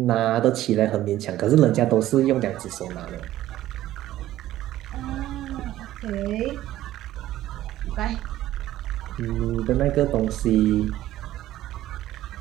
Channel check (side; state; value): left; quieter; 14.1 dB